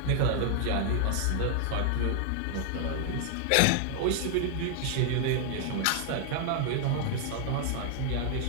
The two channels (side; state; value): both; different; correlation 0.00